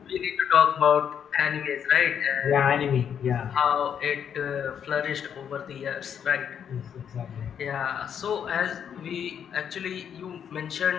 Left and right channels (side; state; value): right; quieter; 8.3 dB